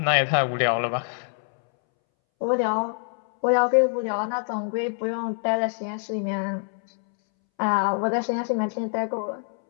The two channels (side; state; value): right; silent; 62 dB below the other